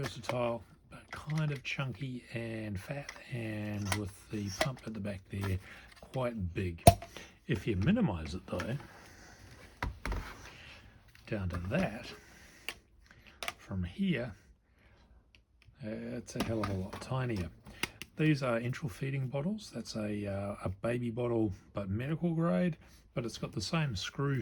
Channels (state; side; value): identical; both; correlation 1.00